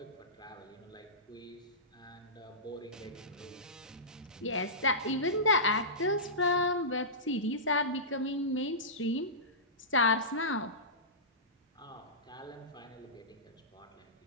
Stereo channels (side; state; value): both; normal; correlation -0.19